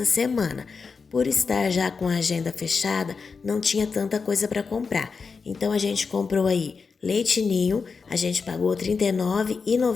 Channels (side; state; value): right; quieter; 5.1 dB